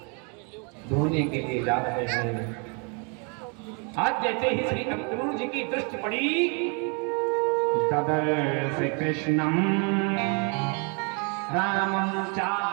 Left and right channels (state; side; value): quieter; left; 35.8 dB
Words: धोने के लिए जा रहे हैं। आज जैसे ही श्री अक्रूर जी की दृष्टि पड़ी, तदर्श कृष्णम रामं चा